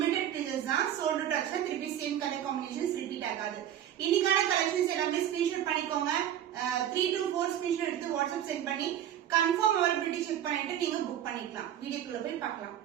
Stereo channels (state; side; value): quieter; left; 10.8 dB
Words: பீசஸ் தான். சோல்ட் அவுட் ஆச்சுன்னா திருப்பி சேம் கலர் காம்பினேஷன்ஸ் ரிப்பீட் ஆகாது. இன்னைக்கான கலெக்ஷன்ஸ் எல்லாமே ஸ்கிரீன்ஷாட் பண்ணிக்கோங்க. 3 to 4 ஸ்கிரீன்ஷாட் எடுத்து வாட்ஸ்அப் சென்ட் பண்ணி கன்ஃபார்ம் அவைலபிலிட்டி செக் பண்ணிட்டு நீங்க புக் பண்ணிக்கலாம். வீடியோக்குள்ள போய் பார்க்கலாம்.